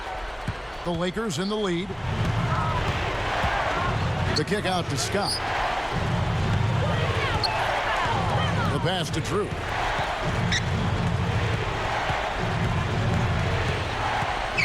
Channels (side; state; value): both; identical; correlation 1.00